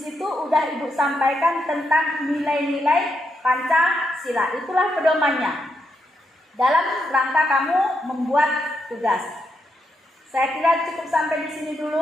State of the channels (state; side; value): normal; both; correlation 0.81